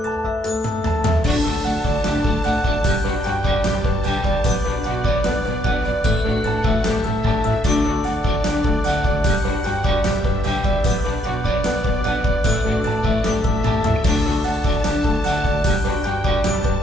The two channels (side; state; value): both; normal; correlation 0.71